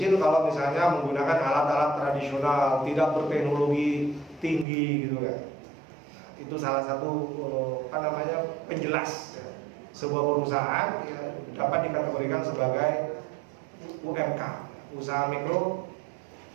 kalau misalnya menggunakan alat-alat tradisional, tidak berteknologi tinggi, gitu kan. Nah, itu salah satu penjelas. Ya. Sebuah perusahaan ya, dapat dikategorikan sebagai UMK, usaha mikro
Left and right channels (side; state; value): left; drops out; at 4.7 s